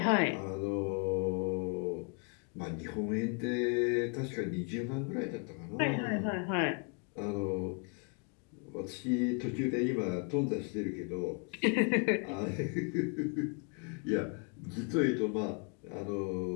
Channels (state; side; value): quieter; right; 38.6 dB